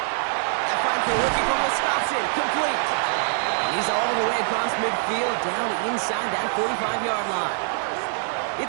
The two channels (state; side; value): silent; left; digital silence